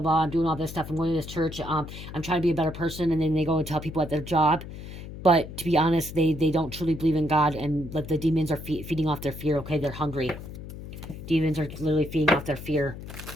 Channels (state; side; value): noise; left; hum, 11 dB below the sound